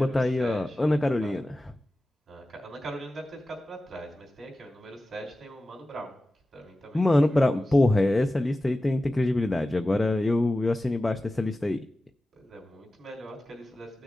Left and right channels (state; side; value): normal; both; correlation 0.95